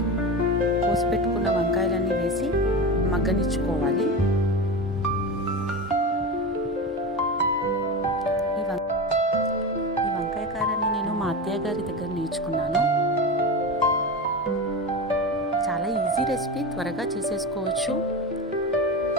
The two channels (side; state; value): both; normal; correlation 0.24